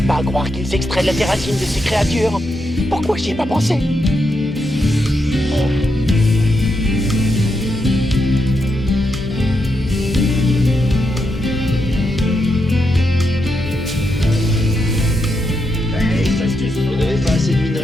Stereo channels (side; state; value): both; normal; correlation 0.83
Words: pas à croire qu'ils extraient la terracine de ces créatures. Pourquoi j'y ai pas pensé? Hey, ça se tue. Vous n'avez pas assez de